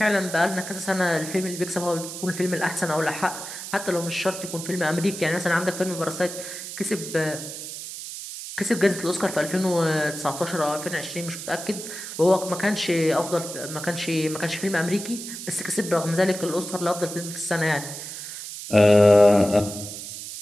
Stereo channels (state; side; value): noise; right; hiss, 9 dB below the sound